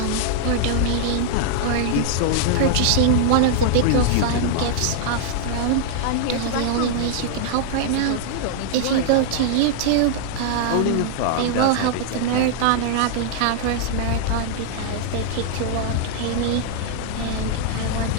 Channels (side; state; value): both; different; correlation -0.01